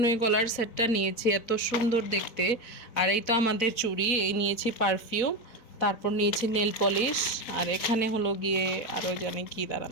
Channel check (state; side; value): late; right; 4.4 ms